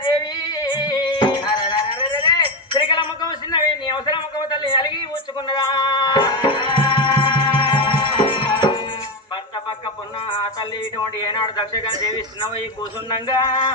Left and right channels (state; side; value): normal; both; correlation 0.13